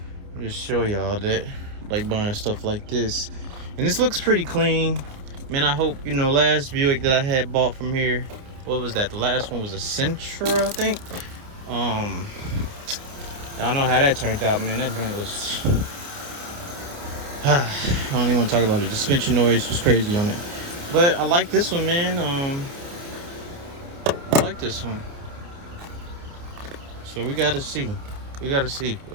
I'll just show y'all that I like buying stuff like this. And this looks pretty clean. Man, I hope, you know, last Buick that I had bought from here, what was that? The last one was a Sentra, I think. Y'all know how that turned out, man. That joint was I don't even want to talk about it. The suspension noise was crazy on it. But I like this one, man. I like this one. So we gotta see. We gotta see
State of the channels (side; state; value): left; late; 29 ms